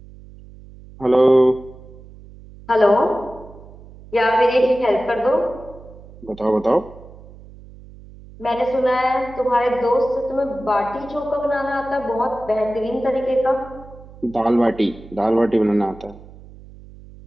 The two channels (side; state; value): right; noise; hum, 20 dB below the sound